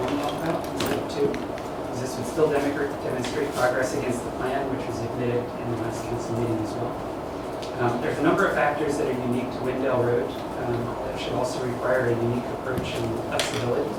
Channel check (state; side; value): identical; both; correlation 1.00